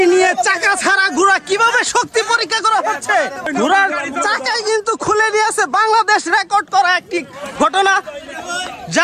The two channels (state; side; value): identical; both; correlation 1.00